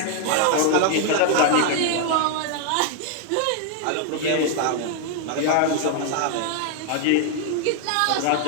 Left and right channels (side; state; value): both; different; correlation 0.00